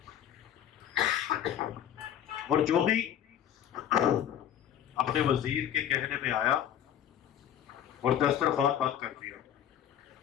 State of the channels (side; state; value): right; quieter; 10.2 dB